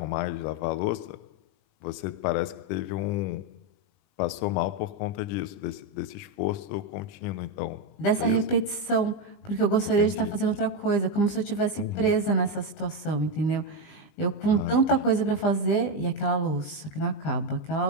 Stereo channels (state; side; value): late; right; 20 ms